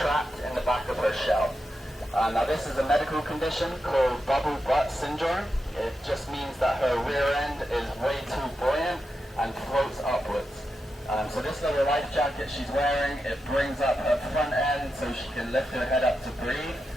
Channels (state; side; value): normal; both; correlation 0.88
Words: in the back of her shell. Now this is a medical condition called bubble butt syndrome. It just means that her rear end is way too buoyant and floats upwards. So this little life jacket she's wearing, it brings up her front end so she can lift her head up to breathe